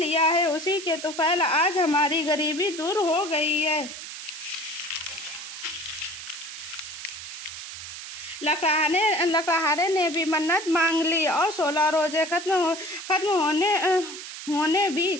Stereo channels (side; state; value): right; noise; hiss, 10 dB below the sound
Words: है। उसी के तुफैल आज हमारी गरीबी दूर हो गई है। लकड़हारे ने भी मन्नत मांग ली और 16 रोजे खत्म होने